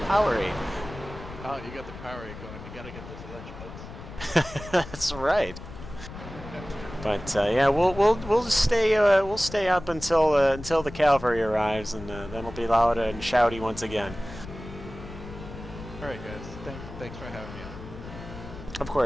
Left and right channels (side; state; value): left; noise; rumble, 13 dB below the sound